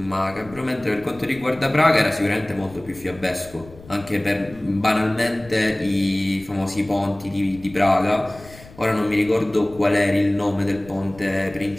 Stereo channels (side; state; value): left; noise; rumble, 21 dB below the sound